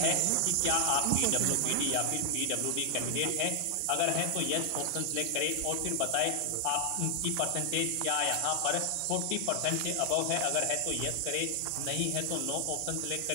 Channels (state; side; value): different; both; correlation 0.00